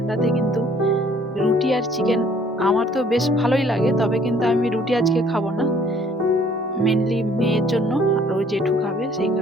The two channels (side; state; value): both; normal; correlation 0.59